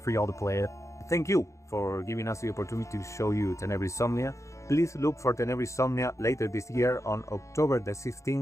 for y'all to play it. Thank you for giving us the opportunity to show you ⴛᴜᴜ. Please look for ⴛᴜᴜ later this year on October the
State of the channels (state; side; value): late; right; 0.15 ms